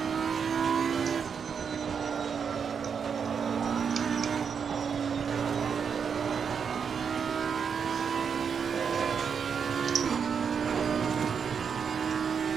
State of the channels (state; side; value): quieter; left; 6.7 dB